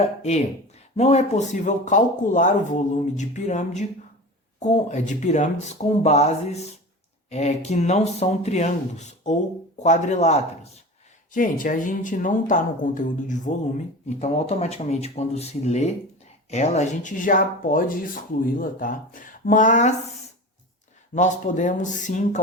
E, não é possível calcular o volume de pirâmides com bases que não são triângulos ou quadriláteros. Gente, a gente não está no conteúdo de volume, então automaticamente quando se lê ela, a gente já pode excluí-la, tá? Mas nós podemos sim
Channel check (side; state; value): both; normal; correlation 0.32